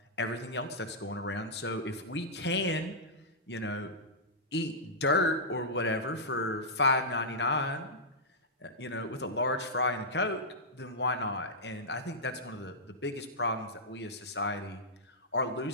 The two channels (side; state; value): both; normal; correlation -0.11